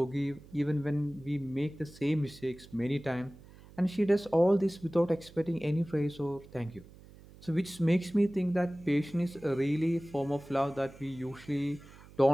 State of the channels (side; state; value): right; noise; hum, 21 dB below the sound